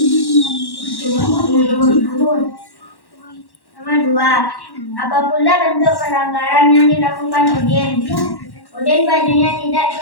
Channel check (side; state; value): right; late; 1.1 ms